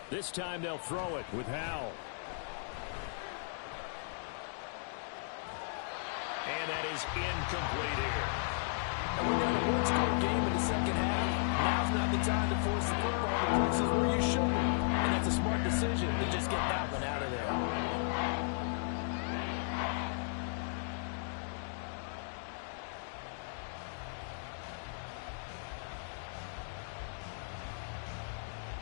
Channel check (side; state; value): right; silent; digital silence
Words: This time they'll throw it with Howell. And that is incomplete here. And when you're in a one-score game in the second half, now's not the time to force the football to places where you shouldn't. And that's a smart decision to just get that one out of there.